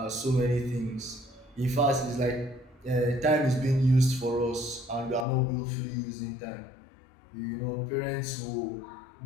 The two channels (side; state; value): right; drops out; at 5.2 s